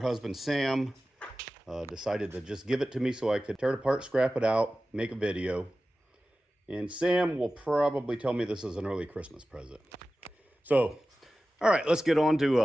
husband Sam decided to just give it to me so I could tear it apart, scrap it out, make a video. And Sam will probably tell me this is an early Christmas present. So, all right, let's get on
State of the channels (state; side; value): normal; both; correlation 0.95